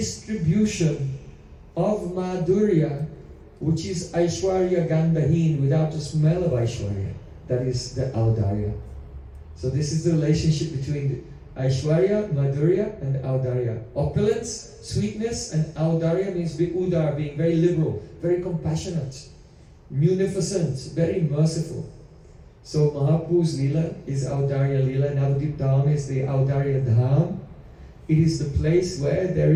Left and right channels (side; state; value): both; identical; correlation 1.00